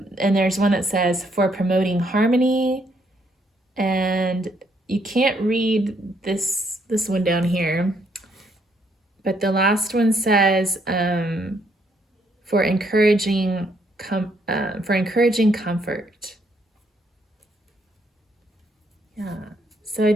there's one that says, for promoting harmony. And you can't read this one down here. But the last one says, for encouraging comfort. Yeah. So I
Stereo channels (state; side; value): normal; both; correlation 0.71